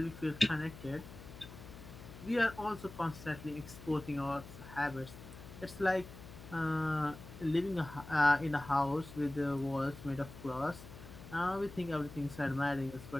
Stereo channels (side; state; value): left; noise; hum, 15 dB below the sound